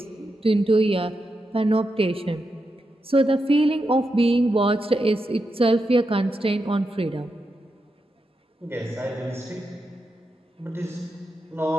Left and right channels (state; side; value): normal; both; correlation 0.86